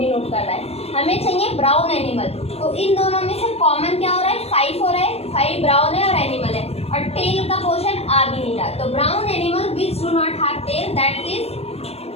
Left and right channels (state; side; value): late; right; 0.29 ms